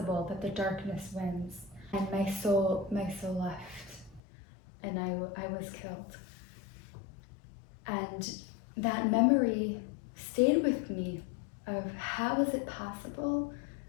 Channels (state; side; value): drops out; right; at 4.2 s